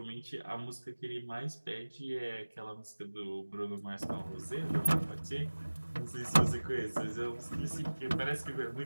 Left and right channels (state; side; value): inverted; both; correlation -1.00